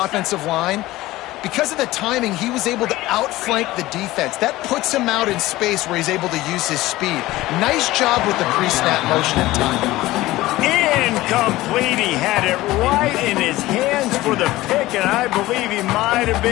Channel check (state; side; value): quieter; right; 17.6 dB